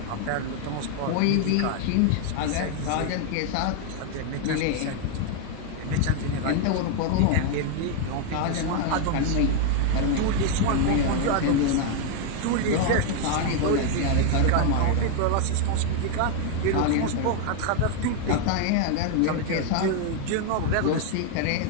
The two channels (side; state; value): both; different; correlation 0.00